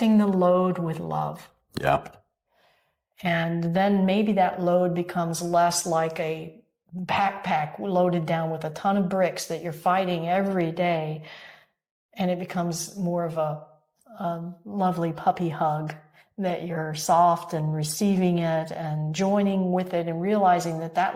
the load with love. Yeah. And then maybe that load becomes less like a backpack loaded down with a ton of bricks that you're fighting every day. And it becomes more of a lovely puppy hug that you're soft and receiving it and joining with it and realizing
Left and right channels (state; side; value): identical; both; correlation 1.00